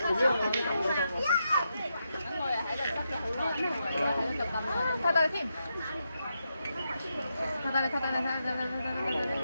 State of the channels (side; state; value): both; inverted; correlation -0.84